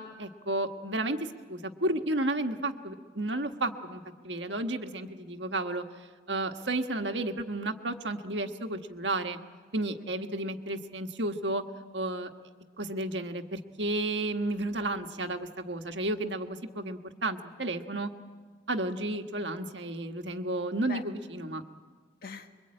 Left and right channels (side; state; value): both; normal; correlation 0.21